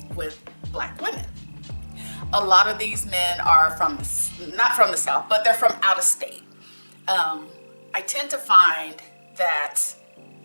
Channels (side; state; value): both; inverted; correlation -1.00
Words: with Black women. A lot of these men are not from the South, but they're from out of state. I tend to find that